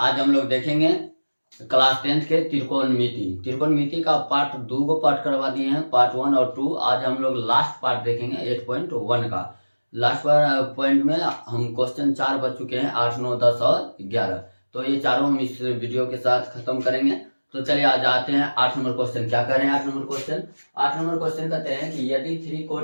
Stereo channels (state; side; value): inverted; both; correlation -1.00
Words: हम लोग देखेंगे क्लास 10th के त्रिकोणमिति का पार्ट 2 को पार्ट करवा दिए हैं, पार्ट 1 और 2। आज हम लोग लास्ट पार्ट देखेंगे 8.1 का। लास्ट पॉइंट में हम क्वेश्चन 4 बच चुके हैं, 8, 9, 10 और 11। तो ये चारों हम इस वीडियो के साथ खत्म करेंगे। तो चलिए आज आते हैं 8 नंबर क्वेश्चन। क्या कह रहे हैं 8 नंबर क्वेश्चन? 8 नंबर क्वेश्चन कहते हैं कि यदि 3